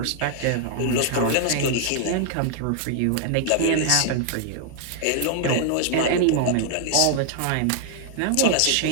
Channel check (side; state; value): both; different; correlation 0.00